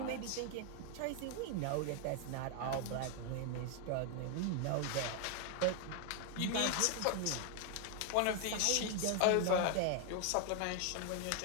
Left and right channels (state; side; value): different; both; correlation 0.00